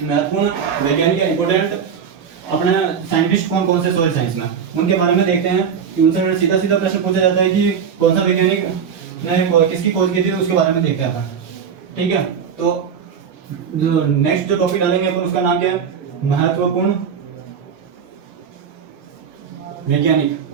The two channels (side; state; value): left; quieter; 7.2 dB